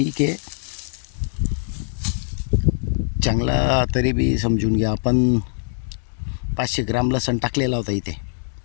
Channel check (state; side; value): silent; right; digital silence